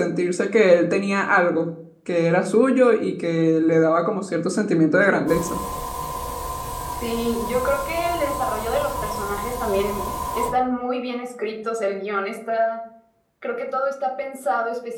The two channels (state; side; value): identical; both; correlation 1.00